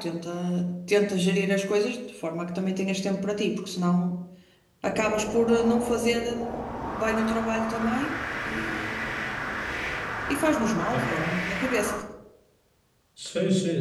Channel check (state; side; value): identical; both; correlation 1.00